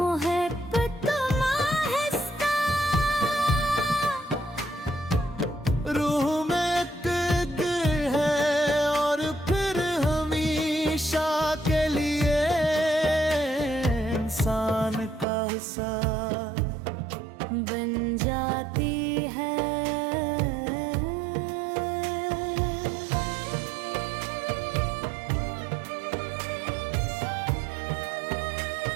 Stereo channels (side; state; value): left; drops out; at 15.2 s